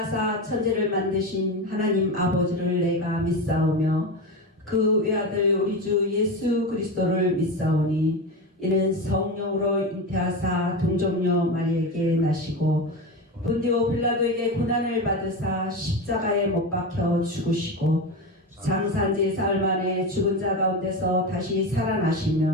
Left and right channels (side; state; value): both; normal; correlation 0.20